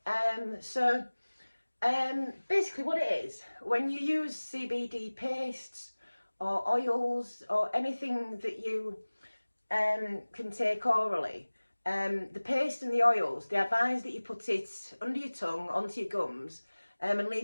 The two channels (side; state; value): both; inverted; correlation -1.00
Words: Basically what it is, when you use CBD pastes or oils or anything that you can take orally, the paste and the oils, they advise that you put it under your tongue, onto your gums, and